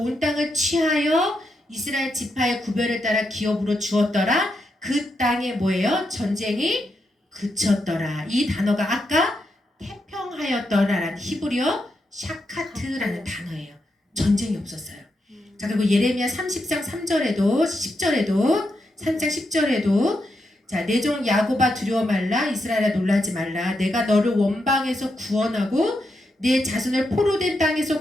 땅을 취하여 이스라엘 지파의 구별을 따라 기업으로 주었더라. 그 땅에 뭐예요? 전쟁이 그쳤더라. 이 단어가 아까 태평하였더라라는 히브리어 샤카트라는 단어예요. 전쟁이 없었어요. 자, 그리고 예레미야 30장 3절에도 10절에도 3장 10절에도 자, 내 종 야곱아 두려워 말라, 이스라엘아 놀라지 말라. 내가 너를 원방에서 구원하고 내 자손을 포로된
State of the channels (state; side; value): normal; both; correlation 0.83